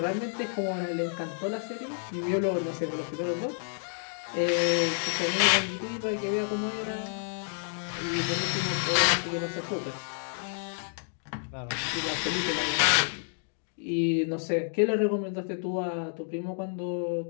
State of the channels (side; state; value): right; silent; digital silence